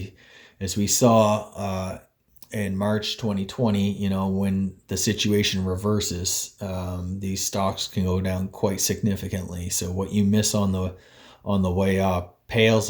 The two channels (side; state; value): both; identical; correlation 1.00